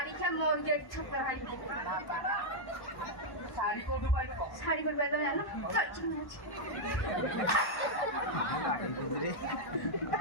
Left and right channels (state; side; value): late; right; 1.1 ms